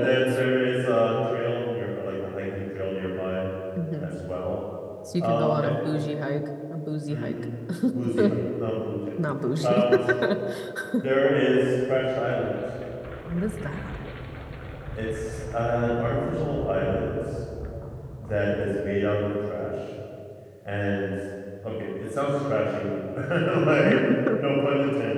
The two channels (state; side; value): identical; both; correlation 1.00